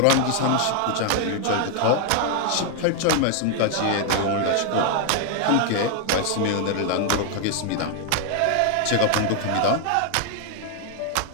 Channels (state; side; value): different; both; correlation 0.00